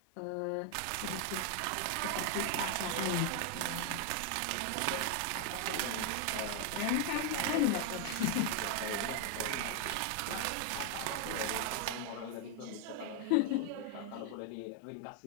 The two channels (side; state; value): both; different; correlation 0.00